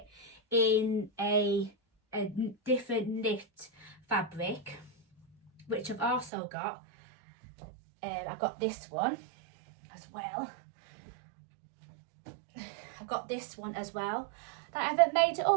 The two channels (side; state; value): left; drops out; at 6.3 s